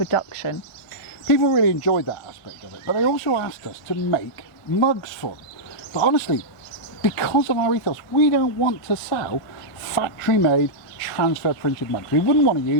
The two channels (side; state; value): right; late; 1.5 ms